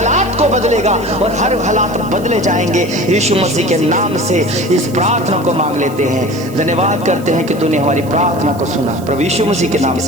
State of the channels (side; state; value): right; noise; hiss, 20 dB below the sound